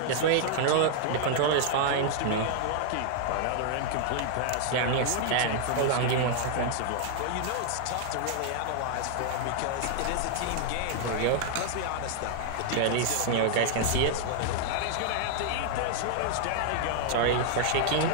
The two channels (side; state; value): both; different; correlation 0.00